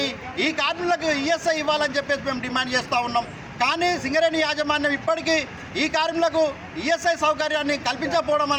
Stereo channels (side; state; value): both; identical; correlation 1.00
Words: ఈ కార్మికులకు ఈఎస్ఐ ఇవ్వాలని చెప్పేసి మేము డిమాండ్ చేస్తూ ఉన్నాం. కానీ సింగరేణి యాజమాన్యం ఇప్పటికీ ఈ కార్మికులకు ఈఎస్ఐ సౌకర్యాన్ని కల్పించకపోవడం